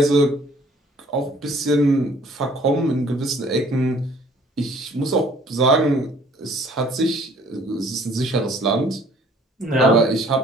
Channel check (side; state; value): both; normal; correlation 0.56